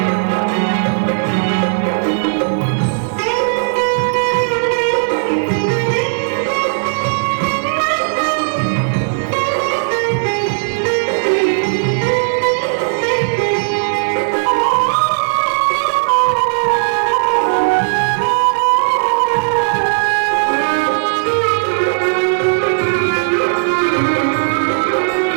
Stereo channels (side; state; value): left; silent; 55 dB below the other